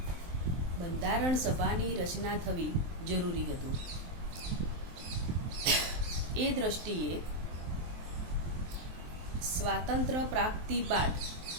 બંધારણ સભાની રચના થવી જરૂરી હતું. એ દ્રષ્ટિએ સ્વાતંત્ર્ય પ્રાપ્તિ બાદ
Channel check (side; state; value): left; late; 23 ms